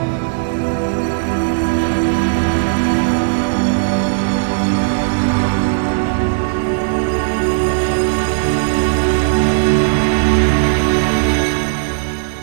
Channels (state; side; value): silent; left; digital silence